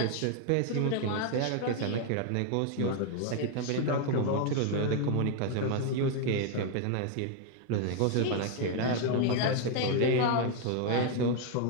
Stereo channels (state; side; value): different; both; correlation 0.00